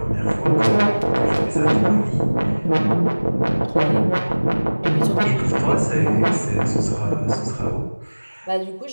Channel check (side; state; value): both; inverted; correlation -1.00